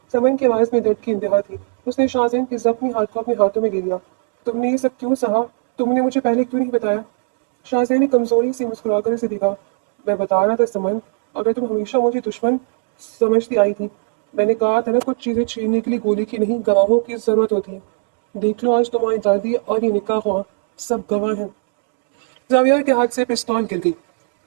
समन की आवाज में दर्द की इंतहा थी। उसने शाहजैन के जख्मी हाथ को अपने हाथों में लिया। तुमने ये सब क्यों सहा? तुमने मुझे पहले क्यों नहीं बताया? शाहजैन ने कमजोरी से मुस्कुराकर इसे देखा। मैं बता रहा था समन, अगर तुम हमेशा मुझे दुश्मन समझती आई थी। मैंने कहा था ना, कुछ चीजें छीनने के लिए गोली की नहीं, गवाहों की जरूरत होती है। देख लो, आज तुम्हारी दादी और ये निकाह हुआ, सब गवाह हैं। जाविया के हाथ से पिस्तौल गिर गई।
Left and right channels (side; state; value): left; silent; 63 dB below the other